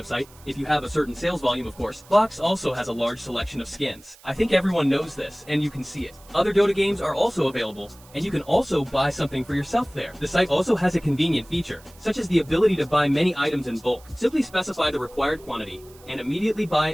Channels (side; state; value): right; noise; hiss, 25 dB below the sound